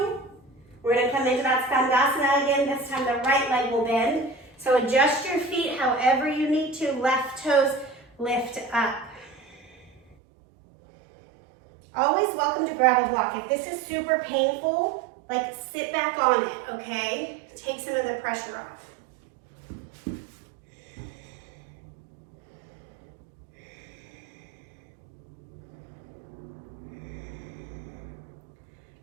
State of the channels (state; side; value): drops out; left; at 10.2 s